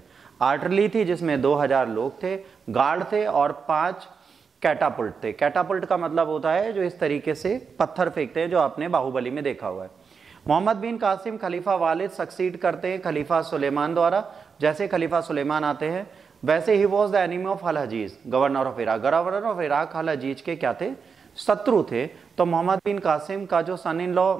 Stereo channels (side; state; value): left; quieter; 5.7 dB